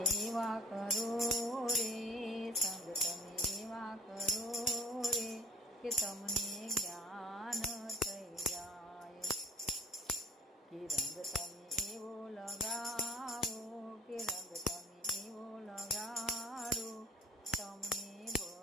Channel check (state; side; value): normal; both; correlation 0.52